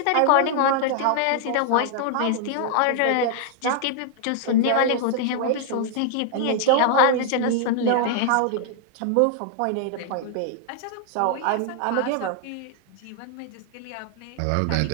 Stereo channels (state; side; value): different; both; correlation 0.00